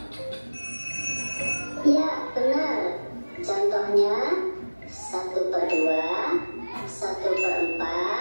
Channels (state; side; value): inverted; both; correlation -1.00